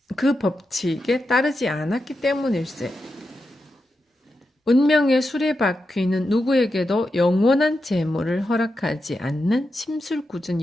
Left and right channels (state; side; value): normal; both; correlation 0.88